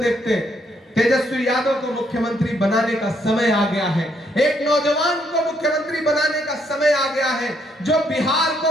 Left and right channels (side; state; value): both; normal; correlation 0.72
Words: देखते। तेजस्वी यादव को मुख्यमंत्री बनाने का समय आ गया है, एक नौजवान को मुख्यमंत्री बनाने का समय आ गया है जो बिहार